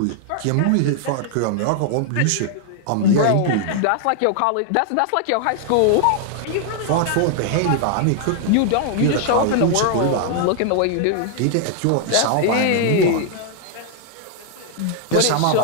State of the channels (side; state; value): both; different; correlation 0.00